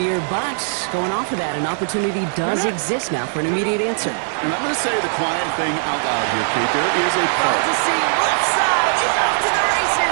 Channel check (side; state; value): left; silent; digital silence